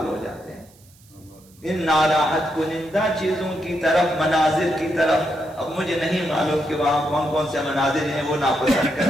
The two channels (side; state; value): right; noise; hiss, 28 dB below the sound